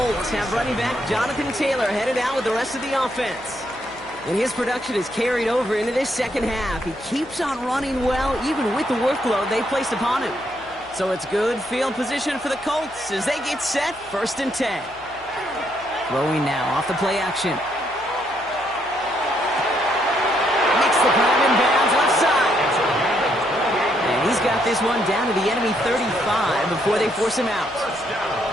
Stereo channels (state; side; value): noise; left; hum, 26 dB below the sound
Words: have running back Jonathan Taylor headed out with the rest of the offense. And his production is carried over into this 2nd half. He keeps on running well, even with the workload they placed upon him. So it's good field position for the Colts as they get set 1st and 10. Throwing now off the play action. Makes the grab in bounds left side. He's got this one down to the enemy 35 before they force him out.